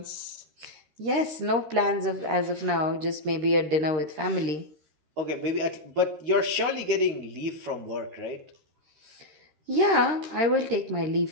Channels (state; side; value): late; left; 13 ms